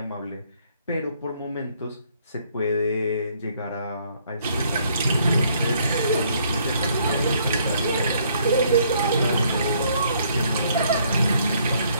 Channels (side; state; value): both; inverted; correlation -0.66